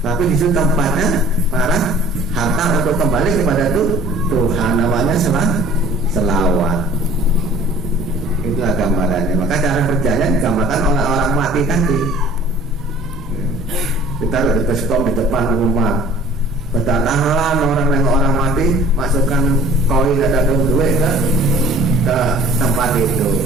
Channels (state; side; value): normal; both; correlation 0.50